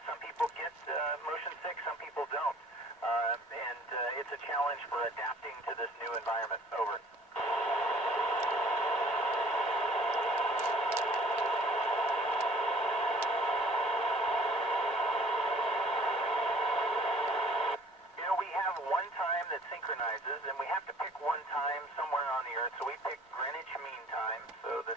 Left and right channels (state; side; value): normal; both; correlation 0.54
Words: Some people get motion sick, some people don't. And it's a challenge for adapting to this new environment. Over. You know, we have one time that synchronizes, and we have to pick one time somewhere on the Earth, so we pick Greenwich Mean Time, so the